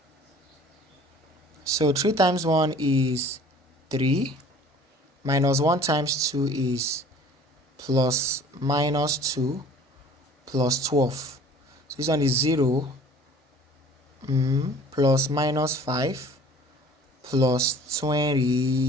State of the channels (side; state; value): both; normal; correlation 0.49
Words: So 3 times 1 is 3, minus 1 times 2 is plus minus 2 plus 12. So this one is 0 plus minus 5 plus